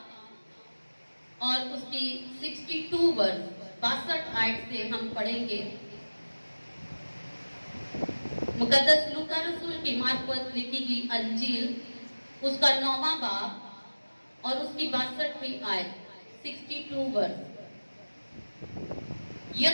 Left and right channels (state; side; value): inverted; both; correlation -1.00